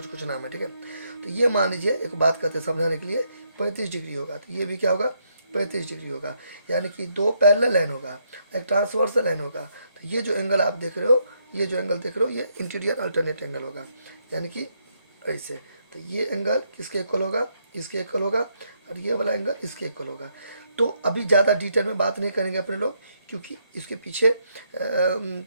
कुछ नाम है। ठीक है, तो ये मान लीजिए एक बात करते हैं समझाने के लिए, 35 डिग्री होगा, तो ये भी क्या होगा, 35 डिग्री होगा, यानी कि दो पैरेलल लाइन होगा, एक ट्रांसवर्सल लाइन होगा। तो ये जो एंगल आप देख रहे हो, ये जो एंगल देख रहे हो, ये इंटीरियर अल्टरनेट एंगल होगा, यानी कि ऐसे। तो ये एंगल किसके इक्वल होगा, इसके इक्वल होगा, और ये वाला एंगल इसके इक्वल होगा। तो अभी ज़्यादा डिटेल में बात नहीं करेंगे अपने लोग, क्योंकि इसके पीछे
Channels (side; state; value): both; inverted; correlation -0.75